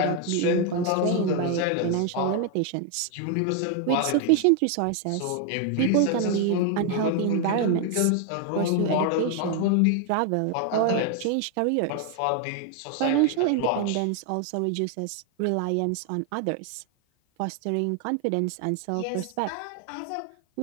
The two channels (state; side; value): different; both; correlation 0.00